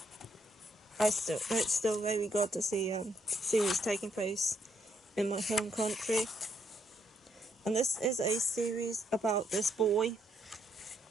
It's still very good to see series taking place in my home country. And this is a series about this boy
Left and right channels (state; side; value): normal; both; correlation 0.74